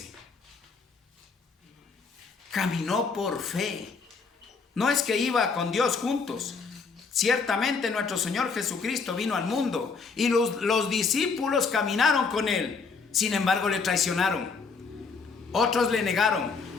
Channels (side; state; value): right; quieter; 4.9 dB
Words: Caminó por fe. No es que iba con Dios juntos. Ciertamente nuestro Señor Jesucristo vino al mundo y los discípulos caminaron con él. Sin embargo, le traicionaron. Otros le negaron.